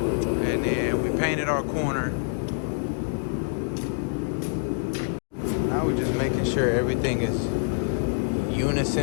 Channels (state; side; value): silent; right; digital silence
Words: then we painted our corner. Now we're just making sure everything is